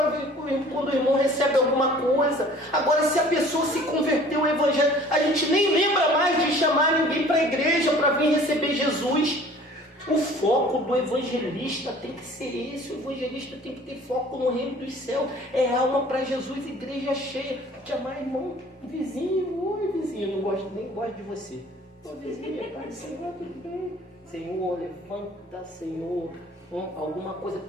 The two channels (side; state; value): both; normal; correlation 0.50